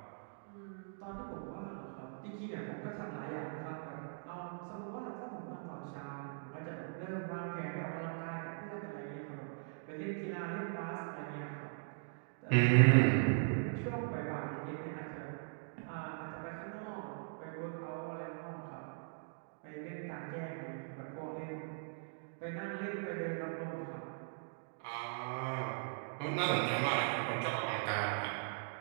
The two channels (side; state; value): left; silent; digital silence